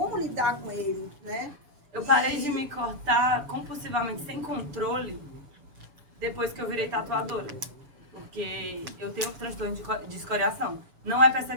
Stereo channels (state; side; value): late; left; 6.9 ms